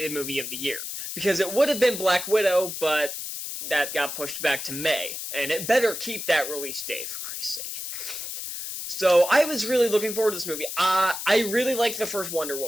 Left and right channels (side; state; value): left; noise; hiss, 6 dB below the sound